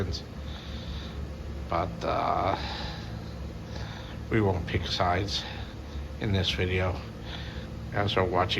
But we won't pick sides in this video, as we're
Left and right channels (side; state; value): both; identical; correlation 1.00